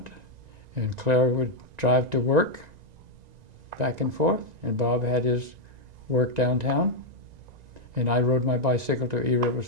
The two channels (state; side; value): late; left; 1.9 ms